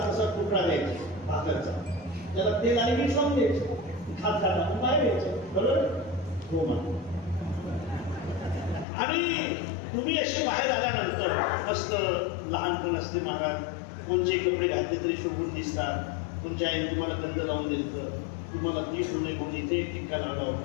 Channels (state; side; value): drops out; right; at 8.8 s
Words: असा तुकडा द्यायची भाकरचा, त्याला तेल आणि मीठ लावून द्यायचं, खात खात बाहेर द्यायचं. बरोबर? हो म्हणा. आणि तुम्ही असे बाहेर आल्यानंतर मस्त लहानपण असते महाराज, कोणचे कपडे घातले तरी शोभून दिसतात. तुमच्या आईने तुम्हाला गंध लावून द्यायचं, तुम्हाला ती होणे म्हणून इथे टिक्का लावला